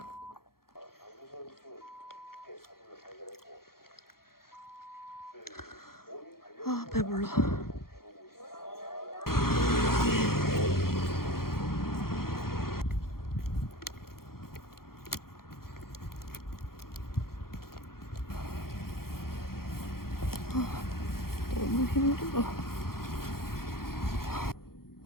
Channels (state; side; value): late; right; 0.93 ms